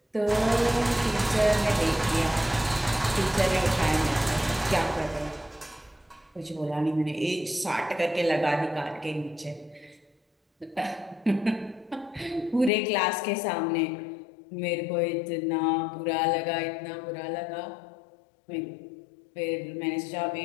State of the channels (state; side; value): drops out; right; at 12.7 s